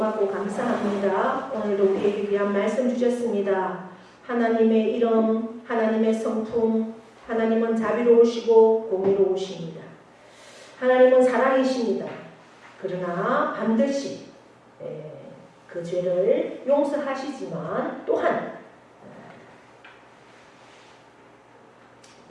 감사합니다. 오늘도 우리에게 귀한 말씀 주셨습니다. 하나님의 이름, 하나님의 성품, 하나님은 자비로우시고 공의로우십니다. 하나님은 사랑이십니다. 그러나 반드시 그 죄를 용서하시지만 또한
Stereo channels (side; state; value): both; identical; correlation 1.00